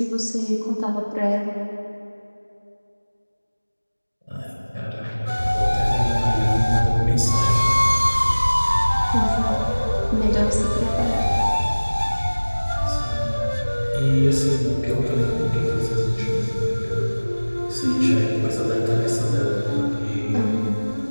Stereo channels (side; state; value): both; inverted; correlation -1.00